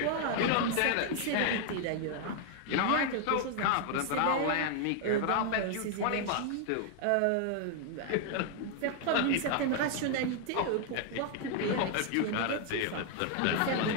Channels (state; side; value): different; both; correlation 0.00